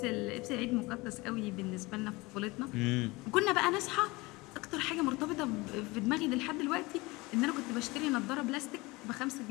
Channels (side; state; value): right; quieter; 23.1 dB